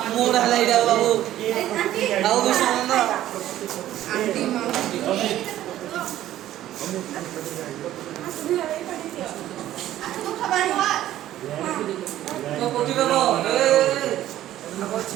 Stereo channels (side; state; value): left; quieter; 13.2 dB